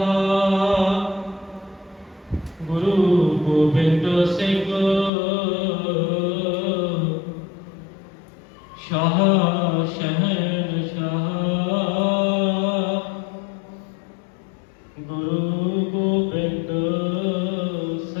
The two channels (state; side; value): drops out; right; at 5.1 s